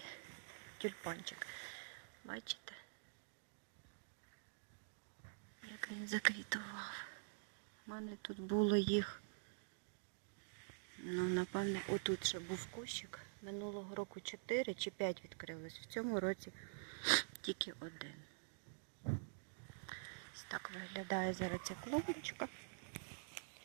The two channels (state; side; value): silent; left; digital silence